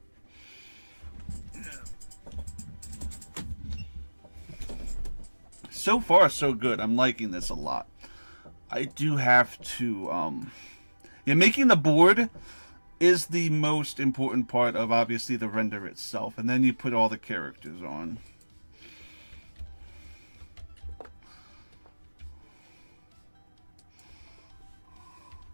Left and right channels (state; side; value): inverted; both; correlation -1.00